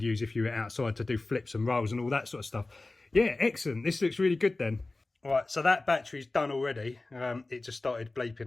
use if you were outside to do flips and rolls and all that sort of stuff. Yeah, excellent. This looks really good then. Right, so that battery's done already. It just started bleeping.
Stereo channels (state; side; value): quieter; right; 3.1 dB